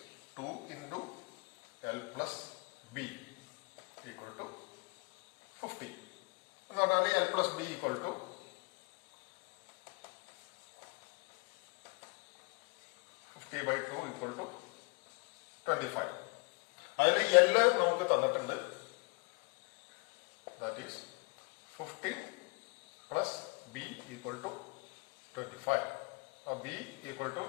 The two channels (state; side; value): quieter; right; 31.5 dB